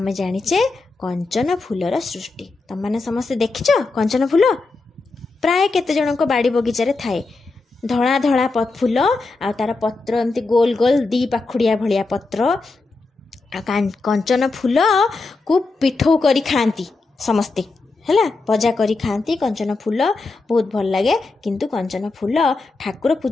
ଜାଣିଛେ କଞ୍ଚନ ଫୁଲର ସୃଷ୍ଟି। ତମମାନେ ସମସ୍ତେ ଦେଖିଛ କଞ୍ଚନ ଫୁଲ? ପ୍ରାୟ କେତେ ଜଣଙ୍କ ବାଡ଼ି ବଗିଚାରେ ଥାଏ। ଧଳା ଧଳା ଫୁଲ, ଆଉ ତାର ପତ୍ର ଏମିତି ଗୋଲ ଗୋଲ 2 ପାଖୁଡ଼ିଆ ଭଳିଆ ପତ୍ର। କଞ୍ଚନ ଫୁଲକୁ ପିଠଉ କରି ଖାଆନ୍ତି ସମସ୍ତେ। ହେଲା, ଭଜା କରି ଖାଆନ୍ତି। କଞ୍ଚନ ଫୁଲ ବହୁତ ଭଲ ଲାଗେ, କିନ୍ତୁ କଞ୍ଚନ ଫୁଲ ଠାକୁର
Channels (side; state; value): right; quieter; 3.6 dB